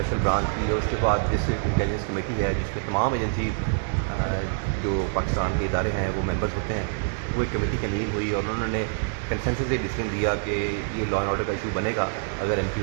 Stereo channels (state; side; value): silent; left; digital silence